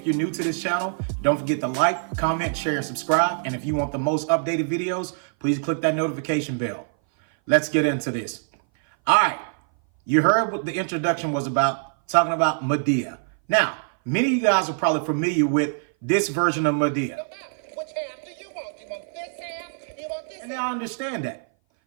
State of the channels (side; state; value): left; silent; 58 dB below the other